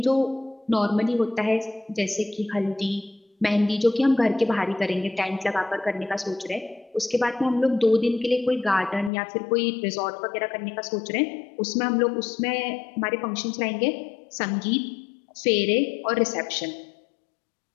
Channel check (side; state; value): right; drops out; at 9.1 s